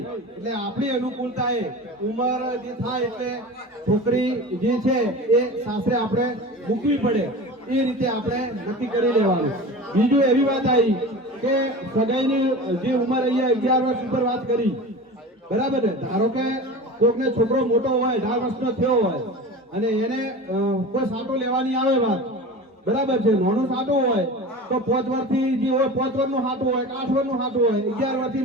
એટલે આપણી અનુકૂળતાએ ઉંમર જે થાય એટલે છોકરી જે છે એ સાસરે આપણે મૂકવી પડે એ રીતે આપણે નક્કી કરી લેવાનું. બીજું એવી વાત આવી કે સગાઈની જે ઉંમર અહીંયા 11 વર્ષ ઉપર વાત કરી. બરાબર ને? ધારો કે કોઈકને છોકરો મોટો હોય, 18 વર્ષનો થયો હોય અને એને કોઈ સાટો લેવાની આવે વાત. બરાબર છે? નાનું સાટું હોય તો 5 વર્ષથી જે હોય 5 વર્ષનું સાટું હોય, 8 વર્ષનું સાટું હોય, 11 વર્ષથી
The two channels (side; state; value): both; normal; correlation 0.33